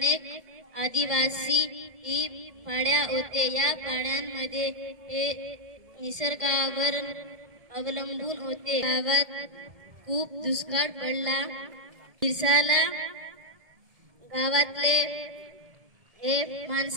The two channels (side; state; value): left; late; 1.7 ms